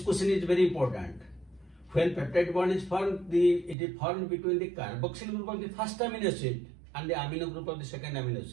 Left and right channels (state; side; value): drops out; left; at 3.8 s